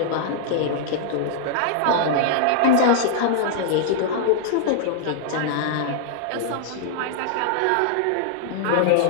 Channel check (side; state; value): both; different; correlation -0.01